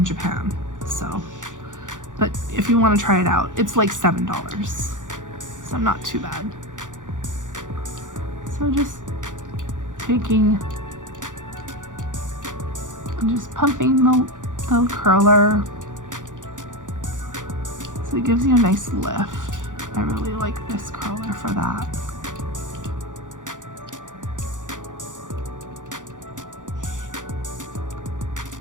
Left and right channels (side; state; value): left; late; 0.87 ms